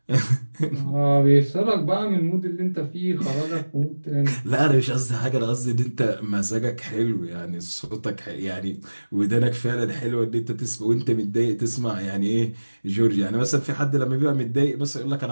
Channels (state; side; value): inverted; both; correlation -1.00